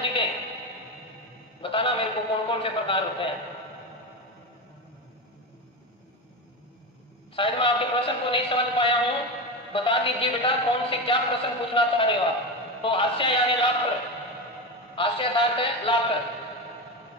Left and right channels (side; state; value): both; normal; correlation 0.18